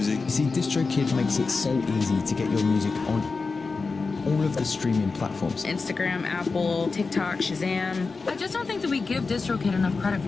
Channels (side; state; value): right; quieter; 4.3 dB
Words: See, DistroKid makes it so easy to get your music on all of the streaming platforms. Instagram, Apple, TikTok, Shazam. I just don't think that we give DistroKid enough credit